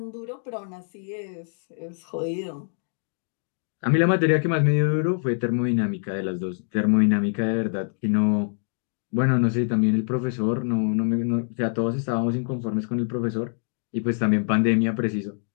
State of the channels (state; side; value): silent; right; digital silence